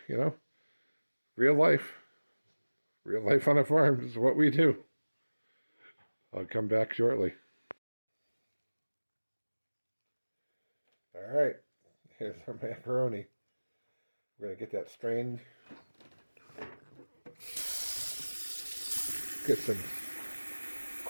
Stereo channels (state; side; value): inverted; both; correlation -1.00